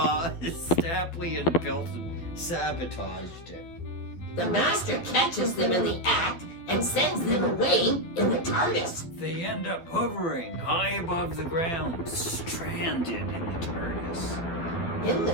Stapley and Bilton sabotaged it. The Master catches them in the act and sends them away in the TARDIS. They end up hovering high above the ground, stranded in the TARDIS. In the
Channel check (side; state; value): right; late; 12 ms